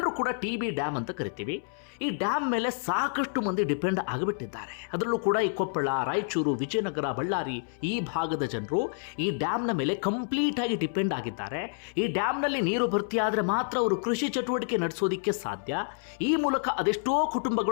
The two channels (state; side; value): silent; right; 59 dB below the other